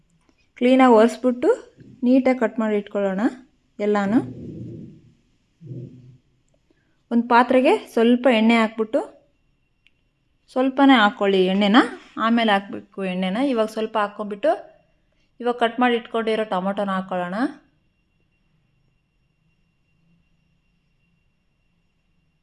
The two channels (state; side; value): identical; both; correlation 1.00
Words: ಕ್ಲೀನಾಗಿ ಒರೆಸ್ಬಿಟ್ಟು ನೀಟಾಗಿ ಕಟ್ ಮಾಡಿ ಇಟ್ಕೊಳ್ಳೋಣ ಎಲ್ಲನೂ. ಒಂದು ಪಾತ್ರೆಗೆ ಸ್ವಲ್ಪ ಎಣ್ಣೆ ಹಾಕ್ಬಿಟ್ಟು, ಸ್ವಲ್ಪನೇ ಹಾಕ್ಕೊಳ್ಳಿ ಎಣ್ಣೆನ, ಆಮೇಲೆ ಹಾಕಬೇಕು ಎಣ್ಣೆನ. ಇವಾಗ ಸ್ವಲ್ಪ ಹಾಕ್ಕೊಂಬಿಟ್ಟು ಇವಾಗ ಕಟ್ ಮಾಡಿ ಇಟ್ಕೊಂಡಿರೋ ಟೊಮೊಟೊನ ಹಾಕ್ಕೊಳ್ಳೋಣ.